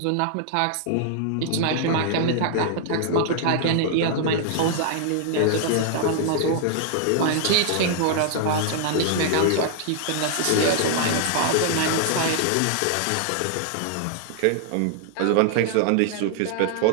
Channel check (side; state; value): both; different; correlation -0.01